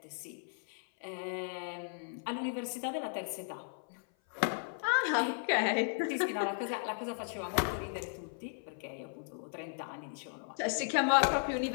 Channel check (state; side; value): silent; right; 54 dB below the other